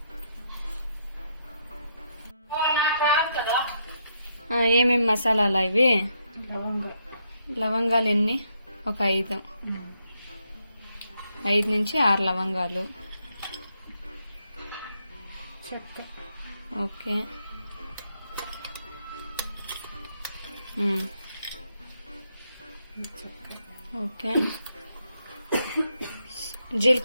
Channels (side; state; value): both; inverted; correlation -0.77